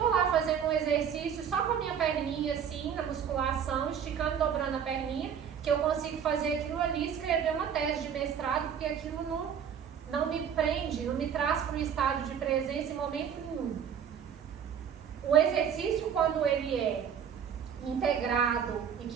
lá fazendo um exercício só com a minha perninha assim, na musculação, esticando, dobrando a perninha, que eu consigo fazer aquilo ali, escrever uma tese de mestrado, porque aquilo não me prende, não me traz para um estado de presença em momento nenhum. O exercício, quando ele é integrado e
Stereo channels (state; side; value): quieter; left; 8.0 dB